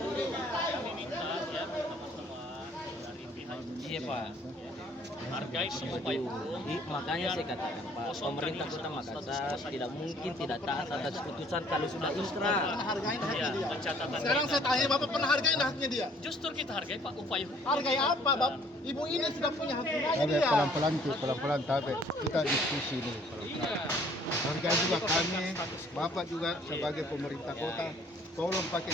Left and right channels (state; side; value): normal; both; correlation 0.58